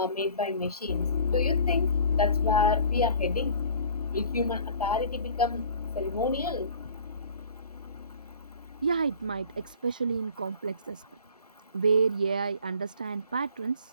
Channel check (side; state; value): both; inverted; correlation -0.47